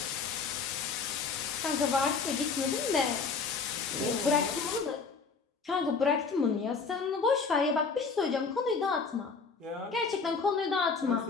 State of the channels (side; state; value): right; quieter; 5.0 dB